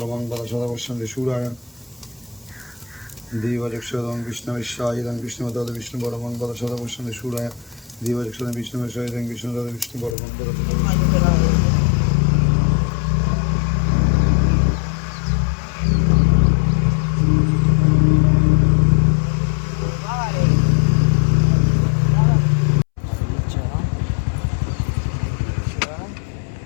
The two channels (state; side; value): drops out; right; at 10.2 s